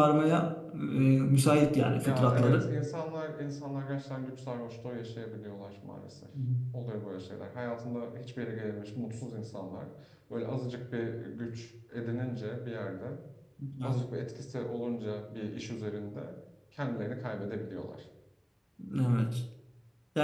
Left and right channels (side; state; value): both; identical; correlation 1.00